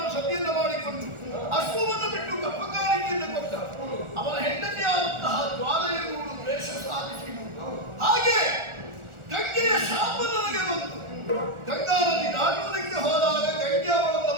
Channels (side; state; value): left; late; 1.4 ms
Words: ಮಾಡಿಕೊಂಡು ಅಶ್ವವನ್ನು ಬಿಟ್ಟು ಕಪ್ಪಕಾರಿಕೆಯನ್ನು ಕೊಟ್ಟ. ಅವನ ಹೆಂಡತಿಯಾದಂತಹ ಜ್ವಾಲೆಯನ್ನು ದ್ವೇಷ ಸಾಧಿಸಿದರು. ಹಾಗೆ ಗಂಗೆಯ ಶಾಪ ನನಗೆ ಬಂತು. ಗಂಗಾ ನದಿ ದಾಟುವುದಕ್ಕೆ ಹೋದಾಗ ಗಂಗೆ ಅವಳನ್ನು